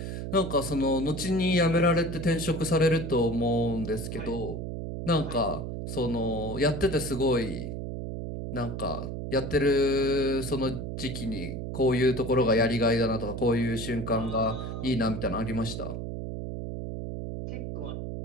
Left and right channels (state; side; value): noise; right; hum, 6 dB below the sound